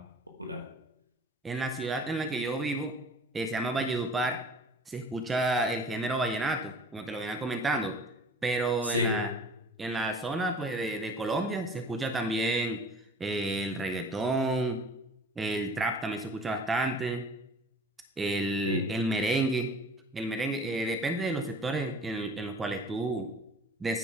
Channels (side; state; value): both; normal; correlation 0.46